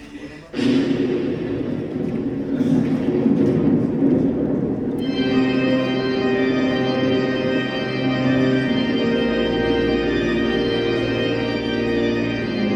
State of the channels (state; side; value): identical; both; correlation 1.00